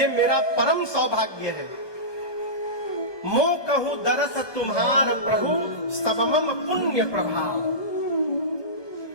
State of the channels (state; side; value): late; right; 1.2 ms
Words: मेरा परम सौभाग्य है। मो कहूं दरस तुम्हार प्रभु, सबमम पुण्य प्रभाव।